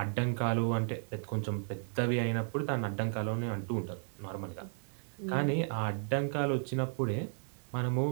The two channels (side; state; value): left; silent; digital silence